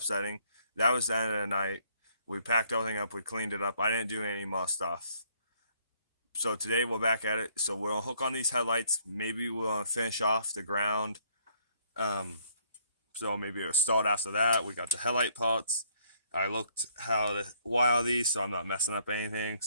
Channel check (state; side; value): inverted; both; correlation -0.67